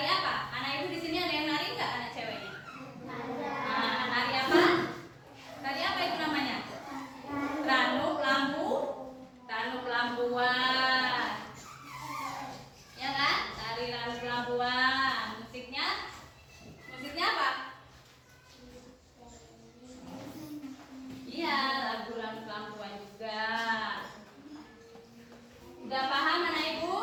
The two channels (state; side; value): identical; both; correlation 1.00